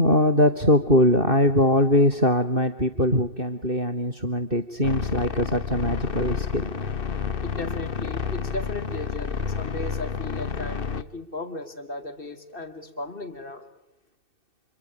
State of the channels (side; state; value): left; late; 2.6 ms